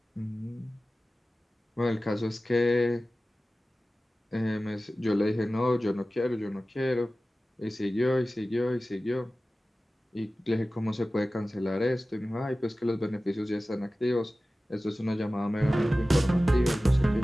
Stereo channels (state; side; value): normal; both; correlation 0.96